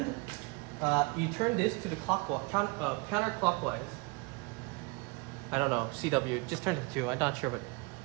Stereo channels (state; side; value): quieter; left; 28.1 dB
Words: you turn this to the counterclockwise. I don't know, CW, just turn it to, I'm not sure, but